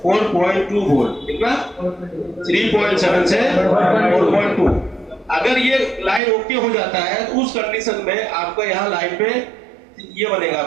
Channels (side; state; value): left; drops out; at 6.2 s